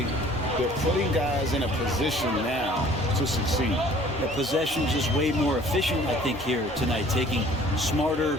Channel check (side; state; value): both; normal; correlation 0.53